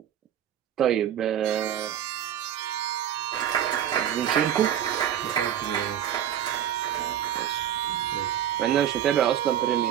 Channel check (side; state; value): left; quieter; 10.3 dB